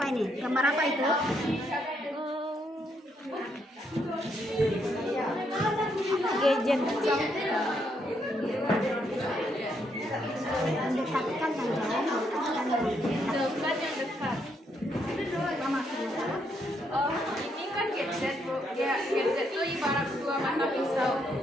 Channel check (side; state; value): both; normal; correlation 0.75